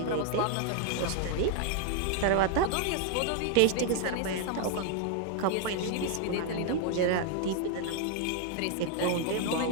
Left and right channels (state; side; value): different; both; correlation 0.00